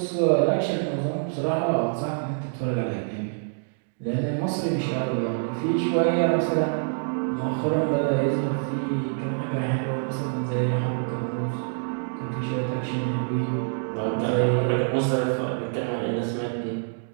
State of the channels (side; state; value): left; silent; digital silence